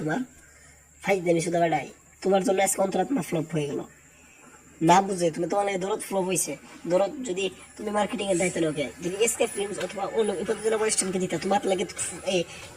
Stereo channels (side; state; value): both; identical; correlation 1.00